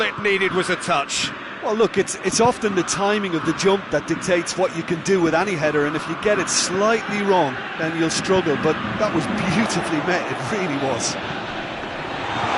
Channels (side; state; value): both; identical; correlation 1.00